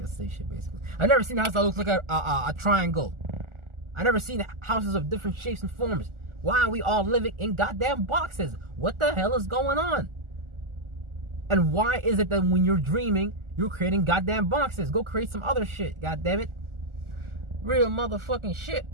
say shit basically. I've never seen a house that looks like a triangle. I've never seen houses of different shapes and forms. Why are we all living in goddamn boxes? What the hell is going on? And why is it that when you're dreaming, you're creating goddamn boxes? Go create some other shit, goddammit. Real motherfucking shit.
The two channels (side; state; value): left; late; 1.4 ms